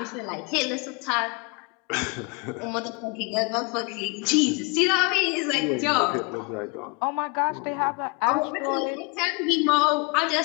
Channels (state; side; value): quieter; right; 31.0 dB